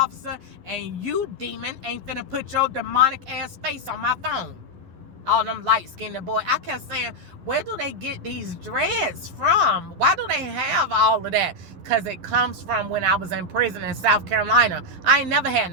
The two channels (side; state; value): left; late; 11 ms